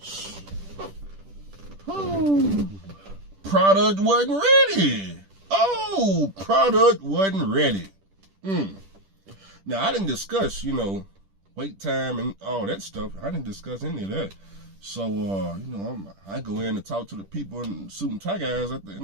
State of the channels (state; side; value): late; left; 10 ms